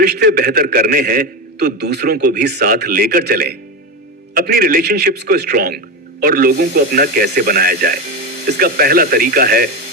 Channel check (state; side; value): normal; both; correlation 0.16